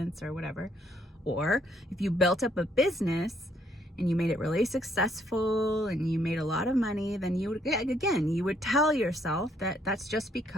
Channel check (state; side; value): normal; both; correlation 0.69